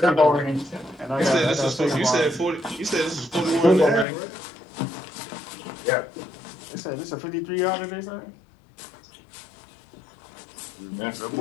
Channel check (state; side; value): drops out; right; at 4.0 s